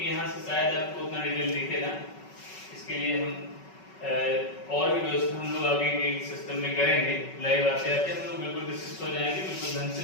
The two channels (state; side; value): late; right; 5.3 ms